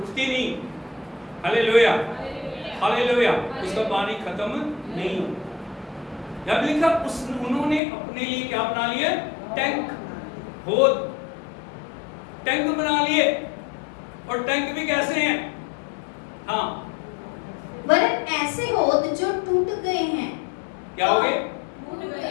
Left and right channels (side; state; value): right; drops out; at 7.8 s